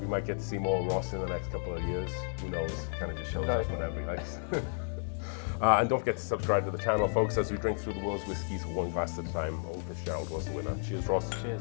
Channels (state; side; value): silent; right; digital silence